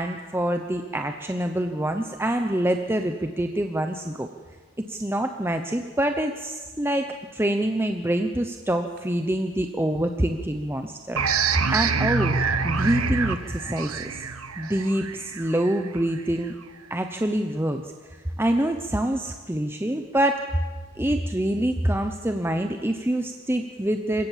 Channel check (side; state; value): both; normal; correlation 0.76